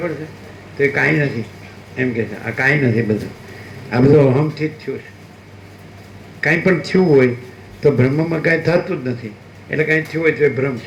છે? તો એ કાંઈ નથી એમ કહે છે. આ કાંઈ નથી બધું, આ બધું અહમથી જ થયું છે. કાંઈ પણ થયું હોય તો બ્રહ્મમાં કાંઈ થતું જ નથી. એટલે કાંઈ થયું હોય તો એ ભ્રમ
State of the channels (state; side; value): identical; both; correlation 1.00